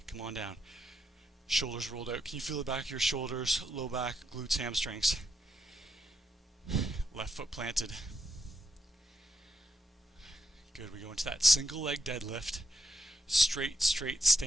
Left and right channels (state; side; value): normal; both; correlation 0.80